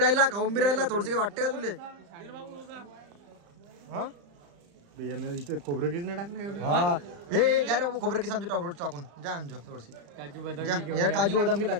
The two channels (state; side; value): late; left; 35 ms